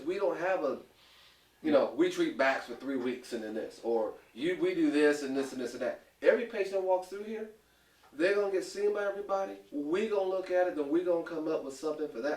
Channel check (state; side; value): identical; both; correlation 1.00